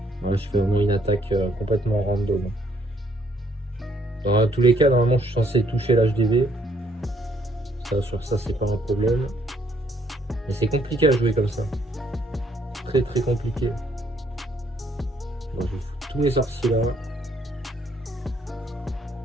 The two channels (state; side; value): normal; both; correlation 0.68